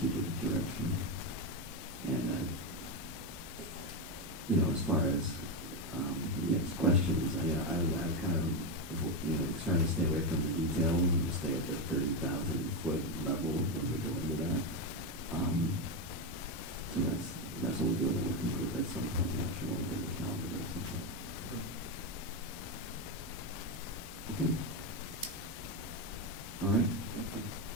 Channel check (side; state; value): both; normal; correlation 0.09